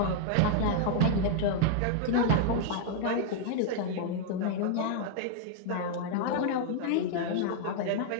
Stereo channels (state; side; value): different; both; correlation 0.00